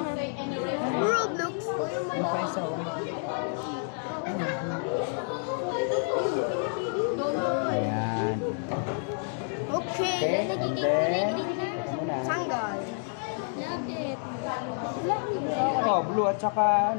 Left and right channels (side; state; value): right; silent; 59 dB below the other